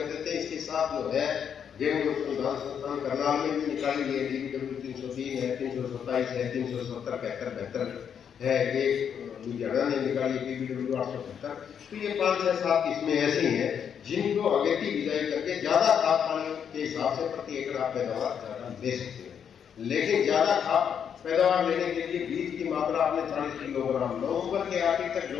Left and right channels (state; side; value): quieter; right; 7.9 dB